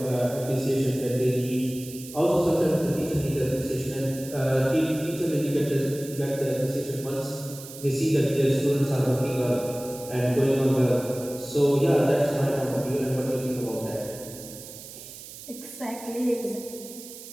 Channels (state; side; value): noise; right; hiss, 14 dB below the sound